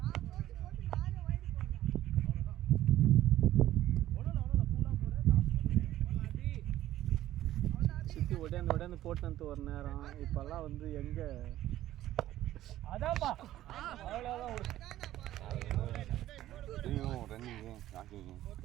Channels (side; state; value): left; quieter; 13.8 dB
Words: சுத்தி உடனே போட்டு ஒரு நேரம் இப்பெல்லாம் வந்து எங்க அதான்ப்பா அவ்வளோதான் ரன்னிங்கு வாக்கிங்கு